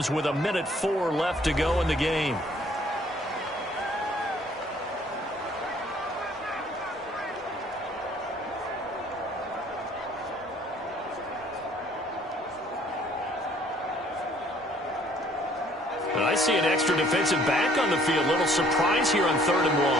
with 1:04 left to go in the game. And I see an extra defensive back on the field. Little surprise here on 3rd and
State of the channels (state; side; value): normal; both; correlation 0.59